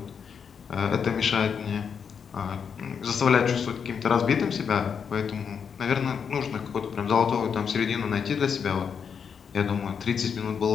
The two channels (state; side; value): quieter; right; 6.8 dB